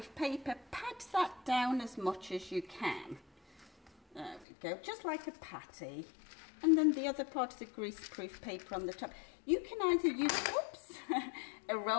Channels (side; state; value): right; drops out; at 4.5 s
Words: paper. Pat that down as much as you can. There we go, just like a patty. And then the other part of the grease-proof paper on the top. You can either use, oops, a